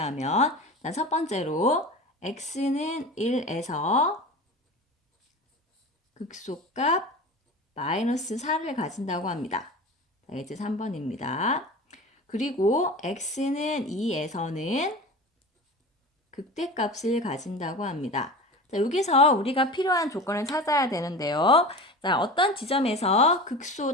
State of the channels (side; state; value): both; normal; correlation 0.33